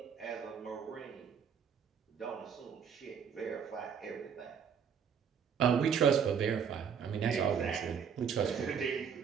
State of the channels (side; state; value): left; quieter; 7.3 dB